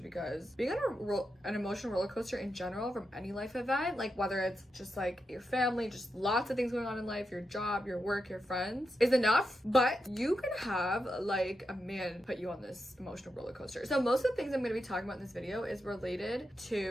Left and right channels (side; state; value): both; normal; correlation 0.87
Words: because being on an emotional roller coaster in general from any life event, like whether it's just like your family, just lots of things going on in life, your job, your work, your friends, is enough. But you can have like a man put you on this emotional roller coaster. So most of the things I'm going to be talking about in this video is related